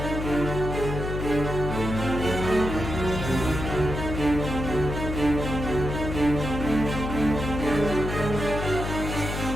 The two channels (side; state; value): left; noise; hum, 4 dB below the sound